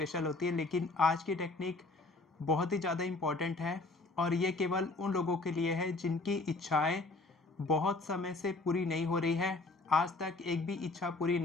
होती है, लेकिन आज की टेक्निक बहुत ही ज़्यादा इम्पॉर्टेंट है और ये केवल उन लोगों के लिए है जिनकी इच्छाएं बहुत समय से पूरी नहीं हो रही है। आज तक एक भी इच्छा पूरी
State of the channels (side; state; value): right; quieter; 3.3 dB